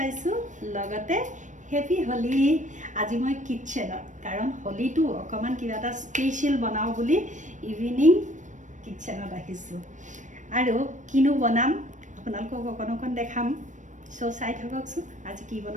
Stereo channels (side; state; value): left; late; 0.36 ms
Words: लगते हैप्पी होली आज मैं किचन कारण होली तो अकमान किबा स्पेशल बनाओ बुली इवनिंग किचन राखिछु आरो किनु बनाम आपनालोকক अकन देखाम सो चाइ थककसु आज की